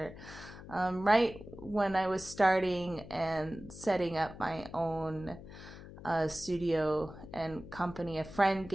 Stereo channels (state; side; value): noise; left; hum, 15 dB below the sound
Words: right when I was starting and setting up my own studio and company. A friend